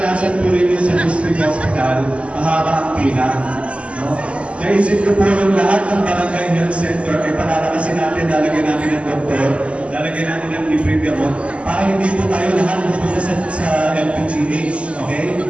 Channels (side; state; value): left; late; 0.059 ms